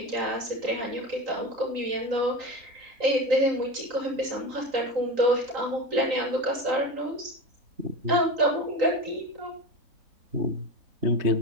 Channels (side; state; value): left; late; 3.8 ms